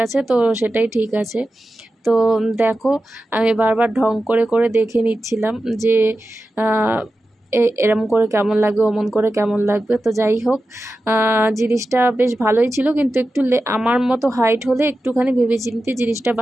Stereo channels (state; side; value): normal; both; correlation 0.93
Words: আছে তো সেটাই ঠিক আছে। তো দেখো আমি বারবার ঢং করে করে দেখে নিচ্ছিলাম যে এরম করে কেমন লাগবে, অমন করে কেমন লাগবে। তো যাই হোক, জিনিসটা বেশ ভালোই ছিল, কিন্তু একটু আমার মতো হাইট হলে একটুখানি ভেবেচিন্তে জিনিসটা